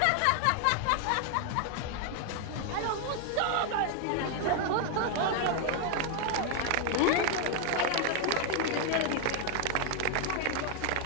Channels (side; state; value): both; different; correlation 0.00